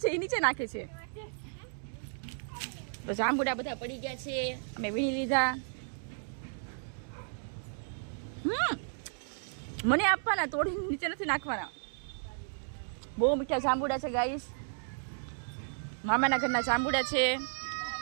છે, એ નીચે નાખે છે. તો જાંબુડા બધા પડી ગયા છે, અમે વીણી લીધા. મને આપવાના, તોડી નીચે નથી નાખવાના. બહુ મીઠા જાંબુડા છે ગાઈસ. મામાના ઘરના જાંબુડા છે.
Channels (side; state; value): left; silent; digital silence